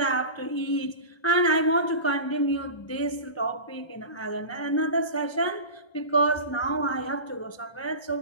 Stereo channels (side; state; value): right; late; 1.3 ms